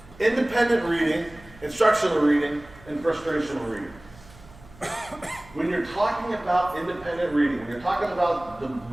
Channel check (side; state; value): right; noise; hum, 22 dB below the sound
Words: Independent reading, instructional reading, and frustrational reading. When you're talking about independent reading, when you're talking about